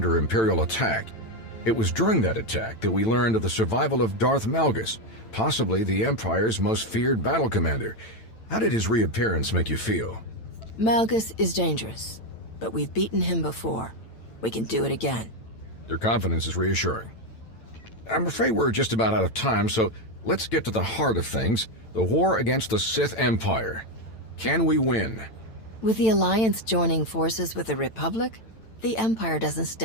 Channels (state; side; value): late; right; 9.0 ms